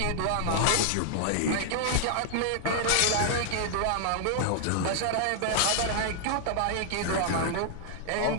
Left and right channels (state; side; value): different; both; correlation -0.01